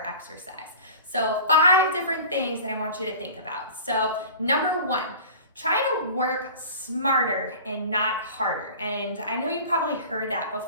So 5 different things that I want you to think about. So number 1, try to work smarter and not harder. And I know you probably heard that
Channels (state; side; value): inverted; both; correlation -0.40